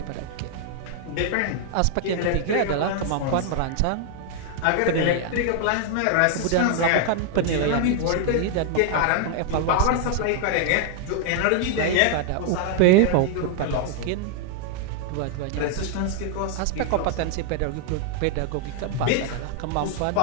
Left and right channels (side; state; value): both; different; correlation 0.00